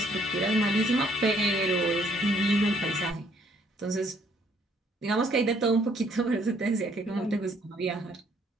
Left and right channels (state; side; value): normal; both; correlation 0.65